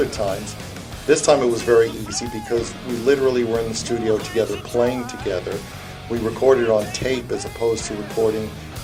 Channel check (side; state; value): both; identical; correlation 1.00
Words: times. This time it was very easy because we literally were in the studio together, playing together. We recorded on tape as opposed to recording